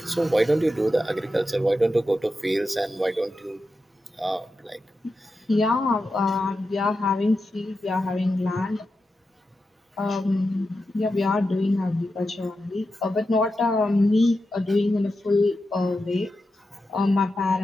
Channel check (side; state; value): both; normal; correlation 0.89